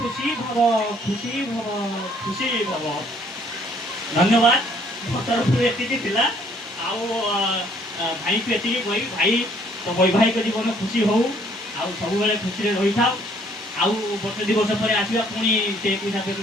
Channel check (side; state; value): both; normal; correlation 0.62